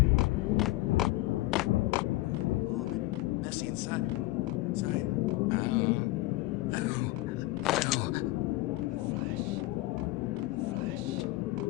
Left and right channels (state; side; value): quieter; right; 18.9 dB